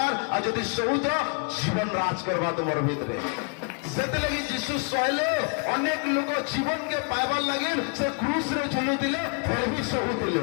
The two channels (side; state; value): right; quieter; 36.4 dB